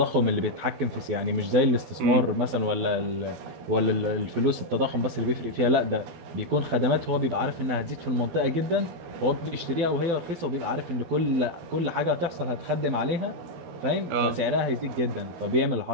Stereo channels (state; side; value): late; left; 12 ms